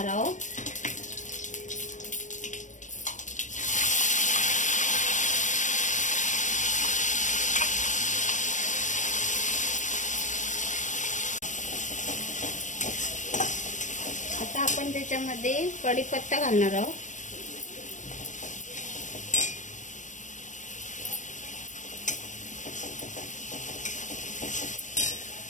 आहोत। आता आपण त्याच्यामध्ये कढीपत्ता घालणार आहोत,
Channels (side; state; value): right; late; 0.36 ms